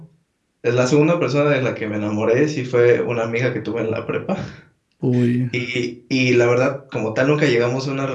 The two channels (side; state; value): both; identical; correlation 1.00